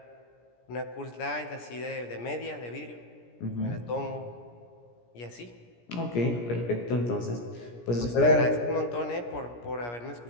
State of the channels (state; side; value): late; right; 17 ms